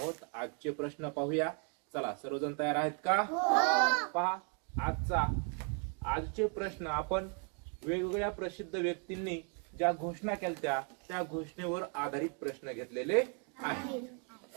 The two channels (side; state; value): left; quieter; 39.0 dB